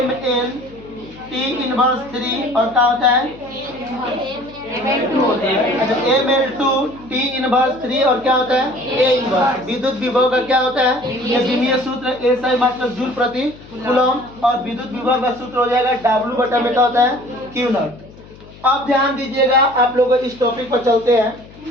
ML T इनवर्स 3 और क्या होता है? ML2 T इनवर्स 3 और क्या होता है? A inverse. विद्युत विभव का क्या होता है? ये बीबीए सूत्र A सही मात्रक जूल प्रति कूलम। और विद्युत विभव का सूत्र हो जाएगा W बटा में क्या होता है? Q not. अब ध्यान दीजिएगा, आप लोग इस टॉपिक पर चलते हैं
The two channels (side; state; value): left; noise; hum, 21 dB below the sound